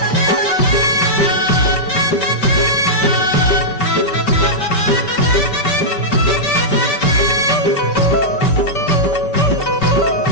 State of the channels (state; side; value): late; right; 5.2 ms